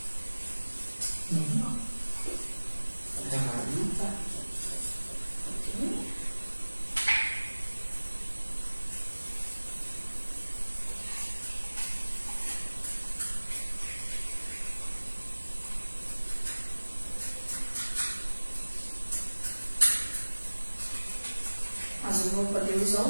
Não. Errado não tá. Mas eu vou poder usar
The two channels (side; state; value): both; inverted; correlation -1.00